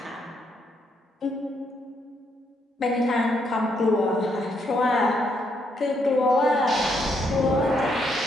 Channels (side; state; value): both; normal; correlation 0.75